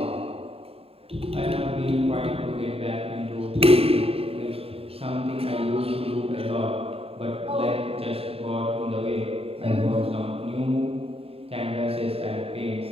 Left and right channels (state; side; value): late; left; 0.28 ms